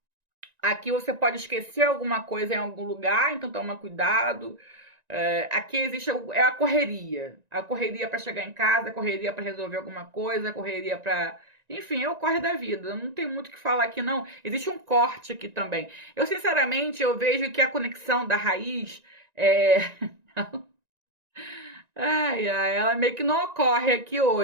Aqui você pode esquecer alguma coisa em algum lugar, então toma cuidado. Aqui existe a correria. A correria para chegar em casa, a correria para resolver alguma coisa, a correria para... Enfim, é o corre da vida. Não tem muito o que falar aqui, não. Existe um corte aqui também. Eu, sinceramente, eu vejo que a conexão da raiz... ela meio que não ocorre aqui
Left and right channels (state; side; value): late; left; 1.9 ms